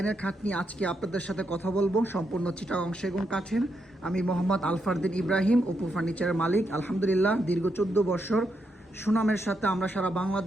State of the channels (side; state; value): both; normal; correlation 0.81